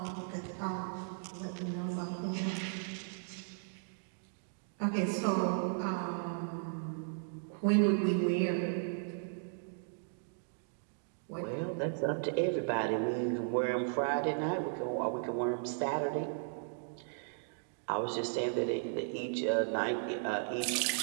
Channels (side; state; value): left; silent; digital silence